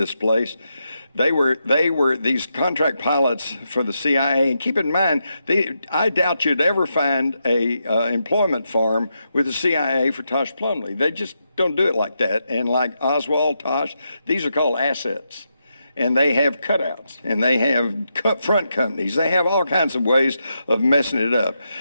place. They were these contract pilots for the CIA, and keep in mind, I doubt you'd ever find a employment form with the CIA for Tosh Plumlee. They just don't do it like that. And like Oswald, Tosh, these are called assets. And they have cutouts, and they have front companies. They have all kinds of ways of messing it up.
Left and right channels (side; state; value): both; inverted; correlation -0.84